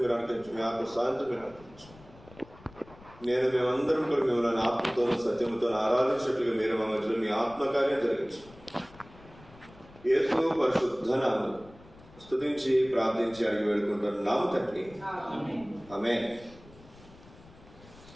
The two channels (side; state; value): left; noise; rumble, 23 dB below the sound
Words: మీరు అనుకరించు. మీ ఆత్మ సాయంత్రం మీరు అనుకరించు. నేను మేమందరం కూడా మిమ్మల్ని ఆత్మతోనూ సత్యంతో ఆరాధించినట్లుగా మీరు మా మధ్యలో మీ ఆత్మకార్యం జరిగించు. యేసు పరిశుద్ధ నామమున స్తుతించి ప్రార్థించి అడిగి వేడుకుంటున్నాము తండ్రి. ఆమేన్.